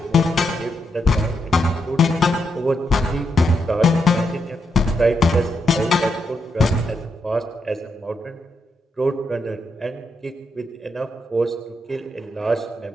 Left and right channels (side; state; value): both; normal; correlation 0.81